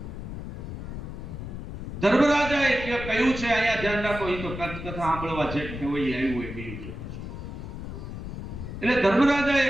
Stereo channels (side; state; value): left; noise; rumble, 8 dB below the sound